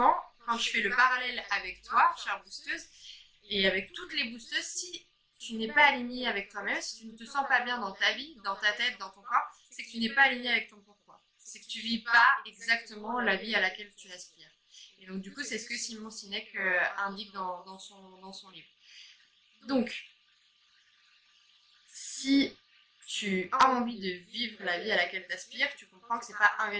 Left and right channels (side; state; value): both; identical; correlation 1.00